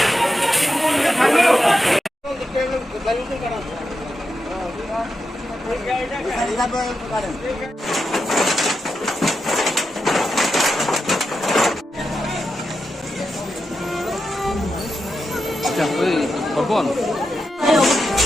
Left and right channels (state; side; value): normal; both; correlation 0.87